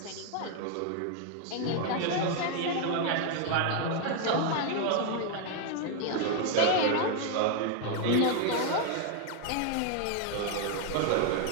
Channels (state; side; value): different; both; correlation 0.01